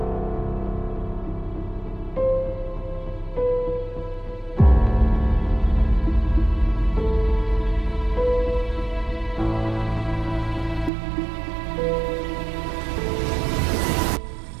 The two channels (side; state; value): left; drops out; at 10.9 s